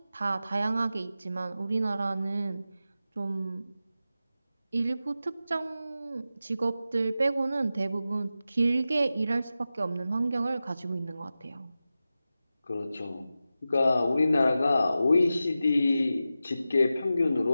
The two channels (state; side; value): inverted; both; correlation -0.93